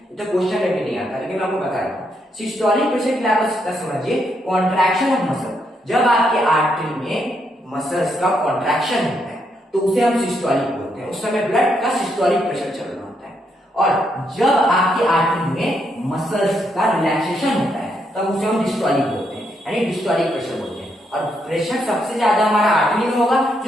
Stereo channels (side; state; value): both; normal; correlation 0.77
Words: तो क्वेश्चन में भी नहीं आता, लेकिन मैं आपको बता रहा हूँ। सिस्टोलिक प्रेशर क्या होता है समझिए, कॉन्ट्रैक्शन ऑफ मसल। जब आपके आर्टरी में मसल्स का कॉन्ट्रैक्शन होता है तो उसे हम सिस्टोलिक बोलते हैं, उस समय ब्लड का सिस्टोलिक प्रेशर चल रहा होता है। और जब आपके आर्टरी में मसल्स का रिलैक्सेशन होता है तब उसे हम डिस्टोलिक बोलते हैं, यानी डिस्टोलिक प्रेशर बोलते हैं। और प्रेशर सबसे ज्यादा हमारा आर्टरी में होगा,